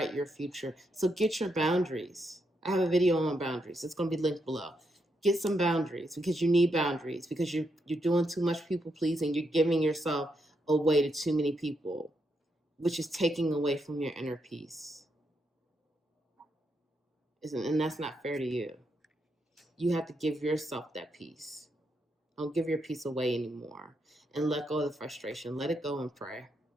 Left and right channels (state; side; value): normal; both; correlation 0.80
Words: your future. So get your boundaries. I have a video on boundaries. It's going to be linked below. Get some boundaries, because you need boundaries, because you're doing too much people pleasing. You're giving yourself away to too many people, which is taking away from your inner peace. And that's not fair to you. You have to give yourself that peace. Don't give your peace away anymore. And let go of the frustration. Let it go and pray.